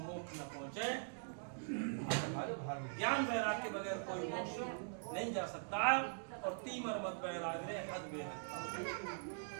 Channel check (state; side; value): silent; left; digital silence